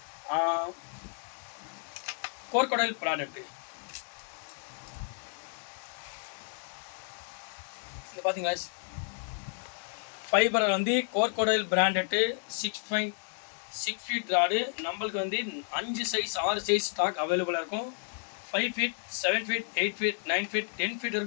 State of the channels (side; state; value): right; silent; 57 dB below the other